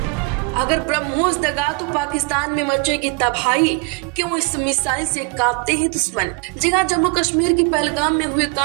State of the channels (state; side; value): quieter; left; 30.4 dB